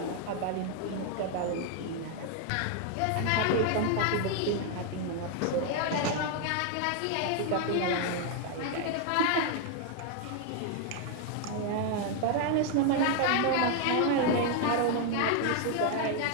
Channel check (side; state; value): both; different; correlation 0.00